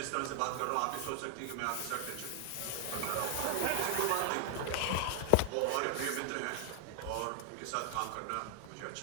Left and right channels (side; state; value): both; different; correlation 0.00